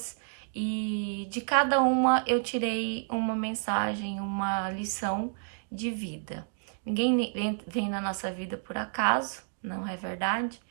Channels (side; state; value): left; silent; digital silence